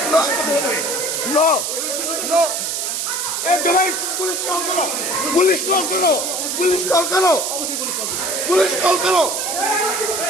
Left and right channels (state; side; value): noise; right; hiss, 1 dB below the sound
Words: নো নো, পুলিশ কল করো, পুলিশ কল করো, পুলিশ কল করো, পুলিশ কল করো,